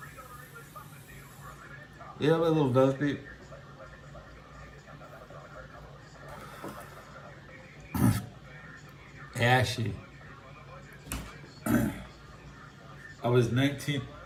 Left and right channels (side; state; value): both; identical; correlation 1.00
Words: Yeah, a little dusty. Ashy. I was 19,